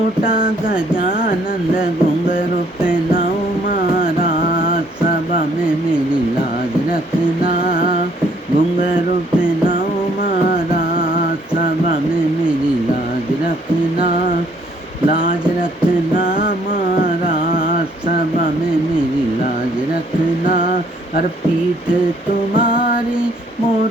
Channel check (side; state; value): both; normal; correlation 0.64